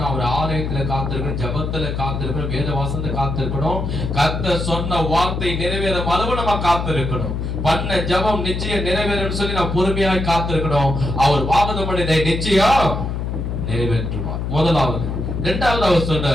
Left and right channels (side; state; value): left; noise; hum, 3 dB below the sound